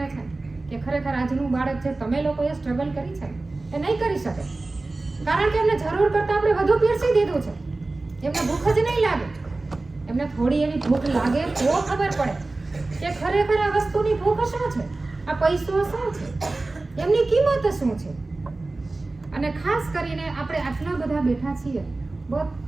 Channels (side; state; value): left; quieter; 3.2 dB